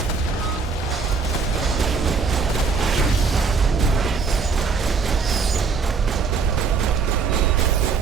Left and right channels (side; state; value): left; quieter; 5.0 dB